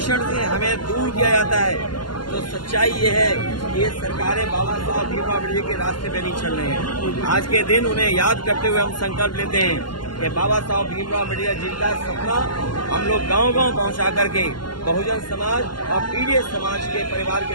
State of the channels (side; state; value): right; late; 0.71 ms